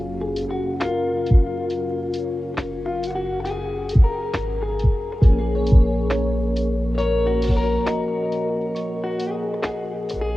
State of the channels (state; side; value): normal; both; correlation 0.95